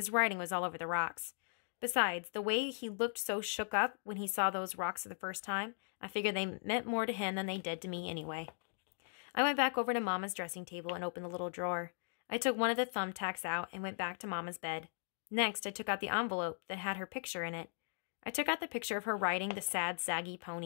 writing was all over the rocks. Besides, the way he looked so shook up when he saw those rocks for the first time, I figured they meant more to him than they did to me anyway. I went back over to Mama's dressing table and opened the little drawer. I took one of the thumbtacks out and went back to Mama's bed. Next, I took out the envelope that had her picture in it. I took out the picture of her riding the sad, saggy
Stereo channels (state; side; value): silent; right; digital silence